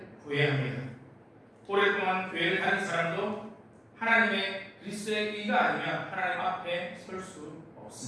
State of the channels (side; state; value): both; identical; correlation 1.00